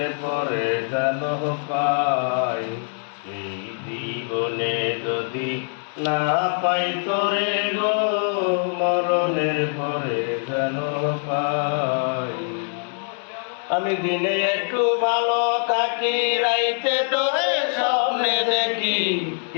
পরে জানো পাই, এই জীবনে যদি না পাই তোরে গো, মরণের পরে জানো পাই। আমি দিনে একটু ভালো থাকি, রাইতে তোরে স্বপ্নে দেখি।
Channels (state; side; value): silent; right; 56 dB below the other